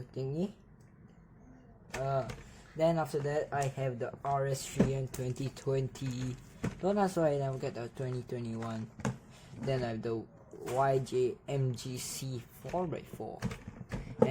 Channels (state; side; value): identical; both; correlation 1.00